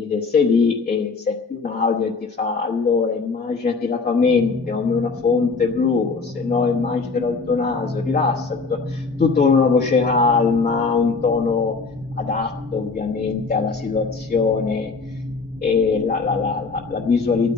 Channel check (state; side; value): quieter; right; 4.4 dB